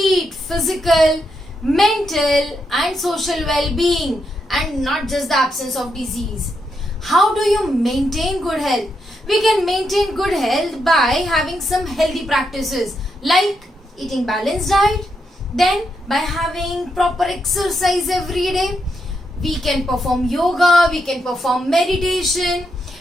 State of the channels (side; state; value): both; normal; correlation 0.82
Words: physical, mental and social well-being, and not just the absence of disease. How do you maintain good health? We can maintain good health by having some healthy practices like eating balanced diet, then by having proper exercise every day. We can perform yoga, we can perform meditation,